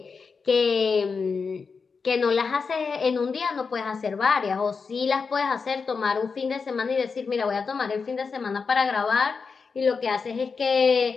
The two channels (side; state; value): right; quieter; 5.1 dB